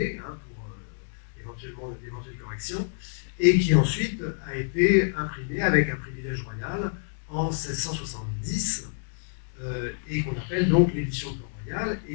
hein, pour éventuellement d'éventuelles corrections, et qui ensuite a été imprimée avec un privilège royal en 1670, et qu'on appelle donc l'édition de Port-Royal,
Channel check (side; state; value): right; silent; digital silence